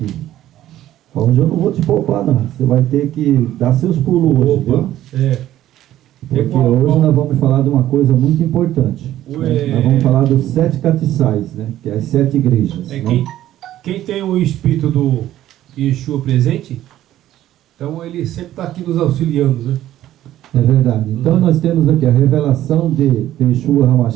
Hoje eu não vou te poupar, não. Você vai ter que dar seus pulos hoje, viu? Porque hoje nós vamos falar de uma coisa muito importante. Né? Nós vamos falar dos 7 castiçais, né? Que é as 7 igrejas. Né? Quem tem o espírito do Yeshua presente, então ele sempre está aqui nos auxiliando, né? É verdade. Então nós temos aqui a revelação de Yeshua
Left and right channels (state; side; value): quieter; left; 13.2 dB